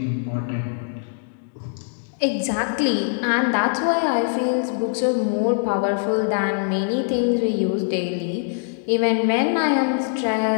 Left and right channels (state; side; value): silent; right; digital silence